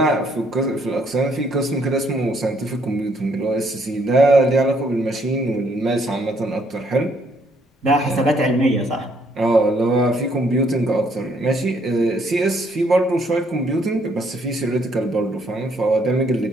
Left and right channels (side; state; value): both; normal; correlation 0.68